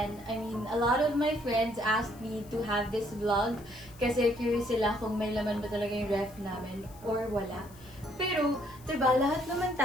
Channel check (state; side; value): noise; left; hiss, 23 dB below the sound